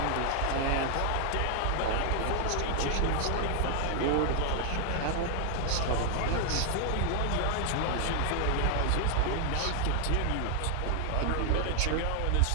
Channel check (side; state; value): both; different; correlation 0.00